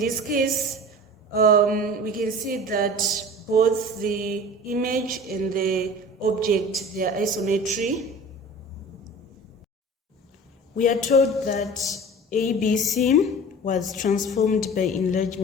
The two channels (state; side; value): normal; both; correlation 0.39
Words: case, we can see that both the image and the object, they are isometry. We are told that ABC was transformed by